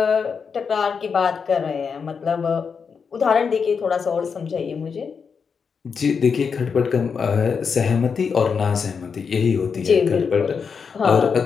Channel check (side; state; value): right; quieter; 5.9 dB